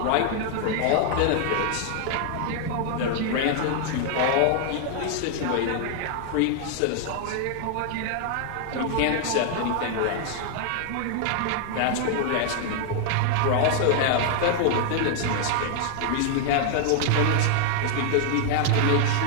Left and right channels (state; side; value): different; both; correlation 0.00